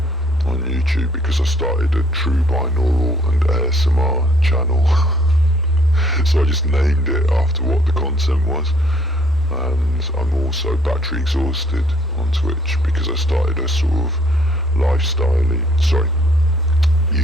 on YouTube because I started a True Binaural and ASMR channel. So I just named it after what the content was. And I'm also battery exhausted on Twitch because I started a sort of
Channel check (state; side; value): normal; both; correlation 0.62